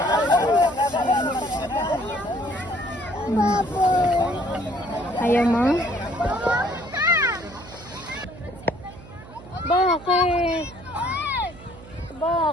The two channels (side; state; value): right; noise; hum, 18 dB below the sound